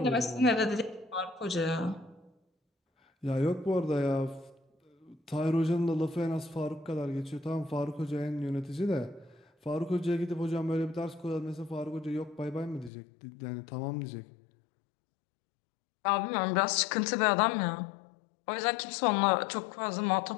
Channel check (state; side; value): drops out; right; at 12.9 s